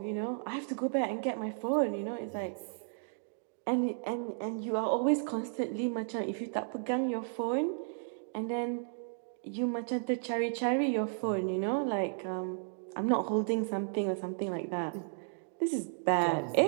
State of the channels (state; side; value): silent; left; digital silence